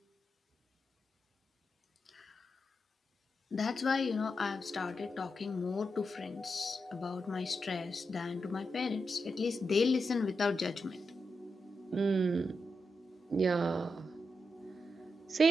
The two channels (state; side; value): normal; both; correlation 0.86